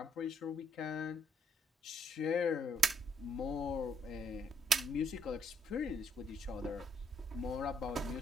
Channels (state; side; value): normal; both; correlation 0.71